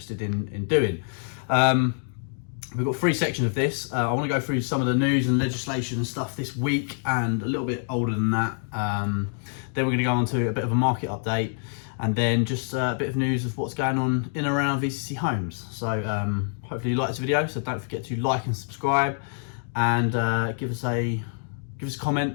in doing. We've got three sections of this. I want to go through some of the news and legislation and stuff this week and a little bit older than that. Then we're going to go on to a bit of a market update and then just a bit of news of what's going on in and around VCC Homes. So hopefully you like this video, so don't forget to like and subscribe and give us a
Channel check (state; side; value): silent; right; 61 dB below the other